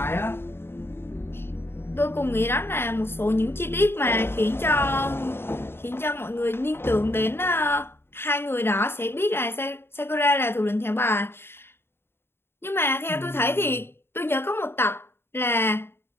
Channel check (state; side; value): late; right; 0.11 ms